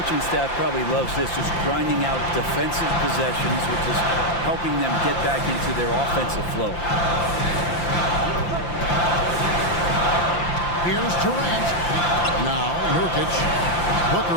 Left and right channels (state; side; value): late; right; 5.8 ms